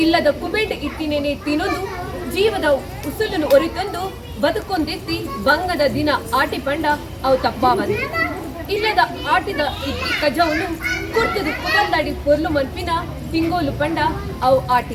ಇಲ್ಲದ ಕುಬೇಟ ಇಟ್ಟಿನೇನೆ ತಿನ್ನೊಂದು ಜೀವದ ಉಸುಲನ್ನು ಒರಿತಂದು ಬದುಕೊಂದೆತ್ತಿ ಬಂಗದ ದಿನ ಆಟಿ ಪಂಡ ಅವು ತಪ್ಪಾವಂದು ಇಲ್ಲದ ಆಟಿದ ಇಟ್ಟಿ ಕಜವನ್ನು ಕುರ್ತದು ಕುದಲ್ದಾಡಿ ಪೊರ್ಲು ಮನ್ಪಿನ ತಿಂಗೋಲು ಪಂಡ ಅವು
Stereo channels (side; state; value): both; identical; correlation 1.00